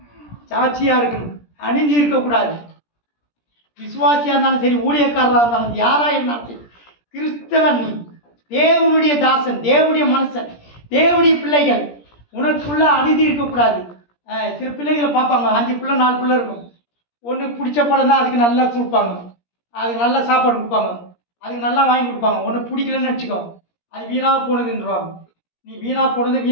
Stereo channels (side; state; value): right; late; 17 ms